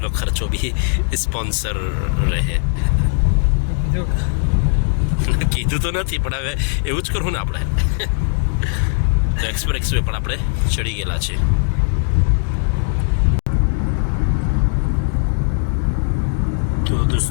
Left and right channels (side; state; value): right; silent; digital silence